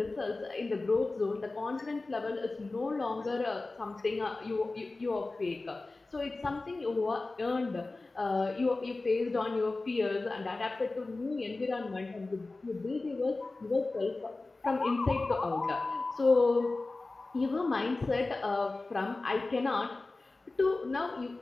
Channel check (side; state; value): right; quieter; 3.3 dB